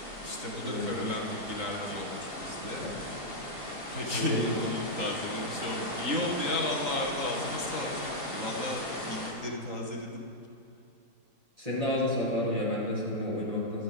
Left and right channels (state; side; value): late; left; 3.8 ms